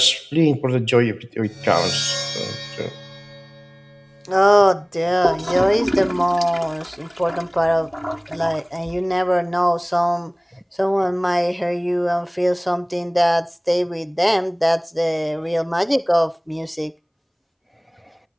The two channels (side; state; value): both; identical; correlation 1.00